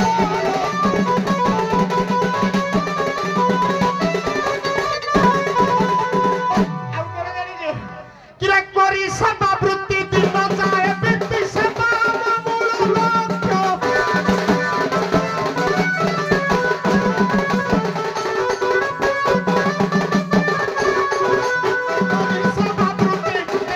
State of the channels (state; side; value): identical; both; correlation 1.00